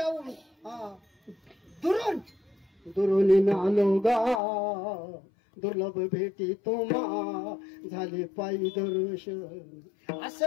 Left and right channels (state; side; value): drops out; right; at 4.4 s